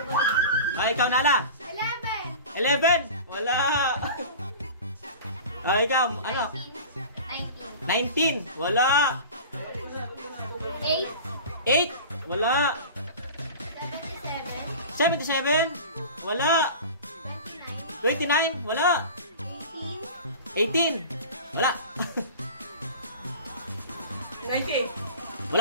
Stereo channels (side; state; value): both; inverted; correlation -0.36